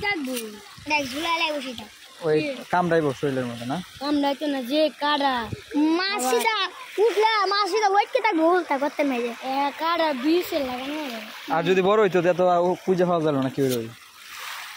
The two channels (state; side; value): identical; both; correlation 1.00